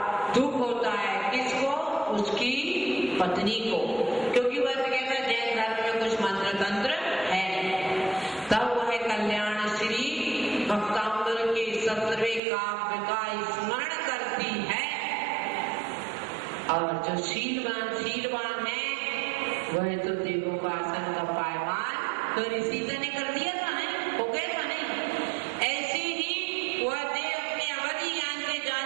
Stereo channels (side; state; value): left; drops out; at 12.4 s